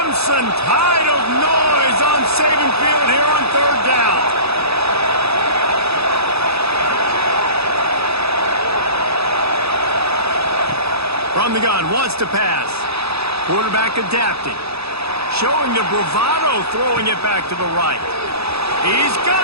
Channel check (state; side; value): late; left; 0.78 ms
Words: tide of noise on Saban Field here on third down. From the gun, wants to pass. Quarterback adapting. Showing the bravado, throwing it back to the right. He's